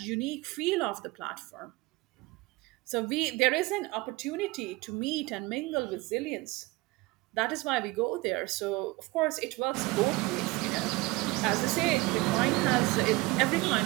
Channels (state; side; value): quieter; left; 22.1 dB